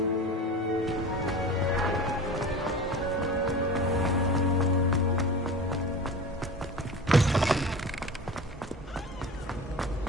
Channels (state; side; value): normal; both; correlation 0.33